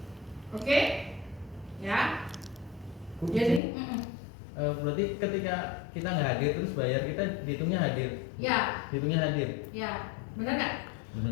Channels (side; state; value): right; drops out; at 3.6 s